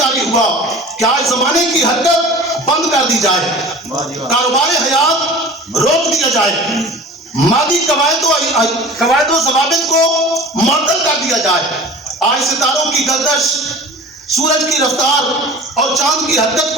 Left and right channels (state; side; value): normal; both; correlation 0.40